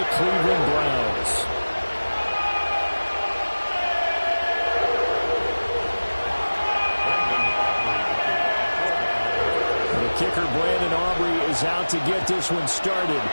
Cleveland Browns. The kicker, Brandon Aubrey, is out to get this one started.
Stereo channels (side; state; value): both; inverted; correlation -1.00